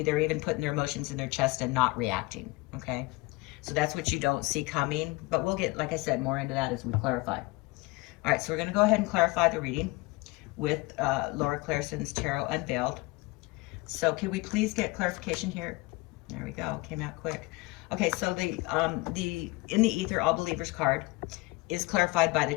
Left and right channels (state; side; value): quieter; right; 23.4 dB